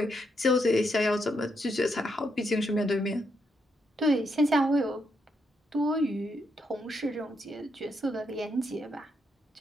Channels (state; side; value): normal; both; correlation 0.79